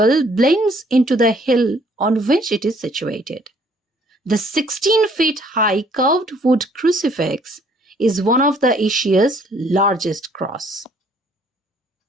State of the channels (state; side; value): normal; both; correlation 0.62